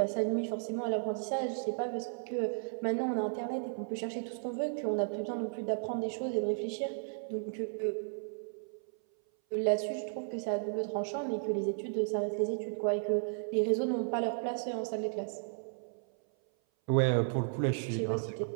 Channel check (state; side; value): silent; left; 55 dB below the other